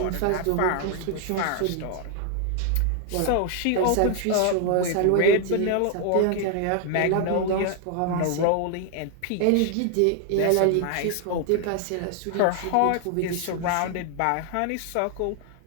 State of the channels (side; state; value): both; different; correlation 0.00